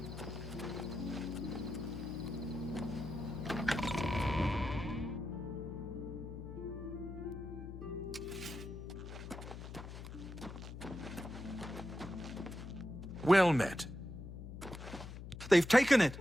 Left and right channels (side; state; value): left; noise; hum, 10 dB below the sound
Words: Well met. They've taken it!